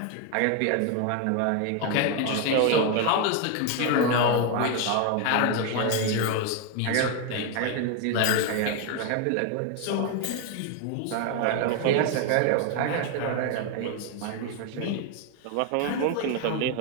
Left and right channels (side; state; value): both; different; correlation 0.01